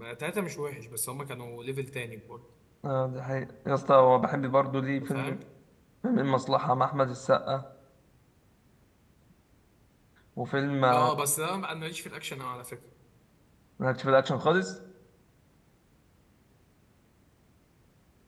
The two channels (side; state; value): both; identical; correlation 1.00